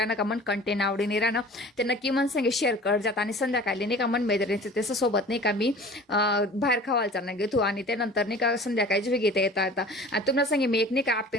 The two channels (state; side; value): normal; both; correlation 0.43